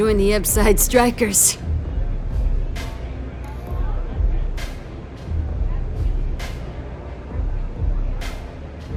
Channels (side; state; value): both; identical; correlation 1.00